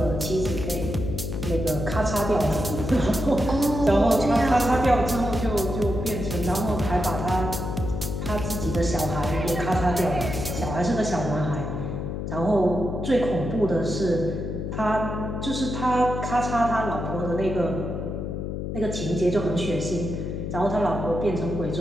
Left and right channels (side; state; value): left; noise; hum, 4 dB below the sound